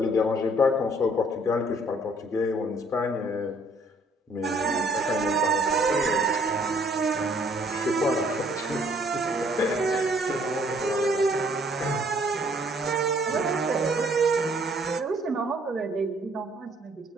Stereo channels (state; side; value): normal; both; correlation 0.62